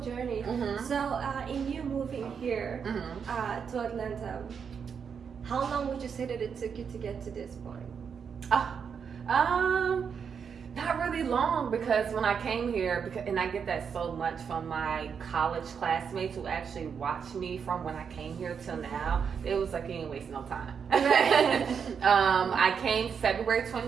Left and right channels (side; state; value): left; quieter; 6.7 dB